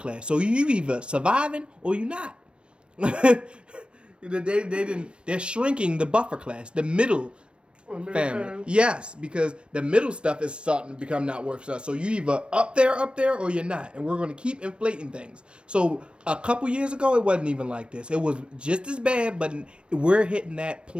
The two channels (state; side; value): late; left; 0.057 ms